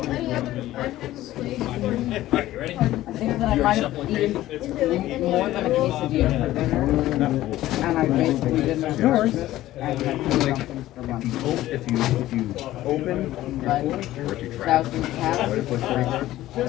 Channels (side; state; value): right; quieter; 15.0 dB